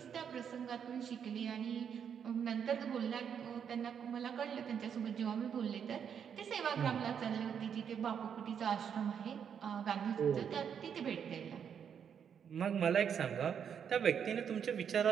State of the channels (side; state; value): left; quieter; 7.8 dB